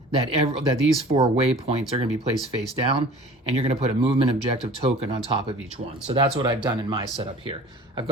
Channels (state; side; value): normal; both; correlation 0.45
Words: that these 4 waypoints are going to be placed face down, and you're going to put a movement objective token on top of each one. So that's what I've done in my setup here. I've